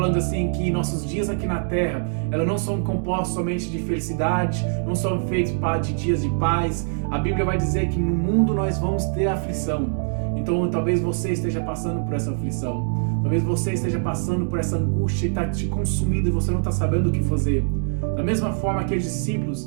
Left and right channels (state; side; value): silent; left; digital silence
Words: assim que nossos dias aqui na terra, elas não são compostos somente de felicidade, não são feitos de dias de paz. A Bíblia vai dizer que no mundo nós vamos ter aflição. Então talvez você esteja passando por essa aflição. Talvez você esteja passando por essa angústia e está te consumindo e você não está sabendo o que fazer. Da mesma forma que os